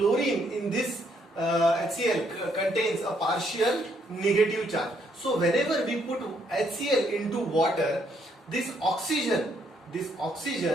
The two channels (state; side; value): normal; both; correlation 0.71